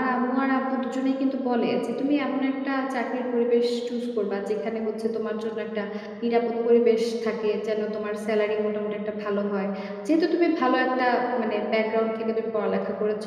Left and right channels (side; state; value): both; identical; correlation 1.00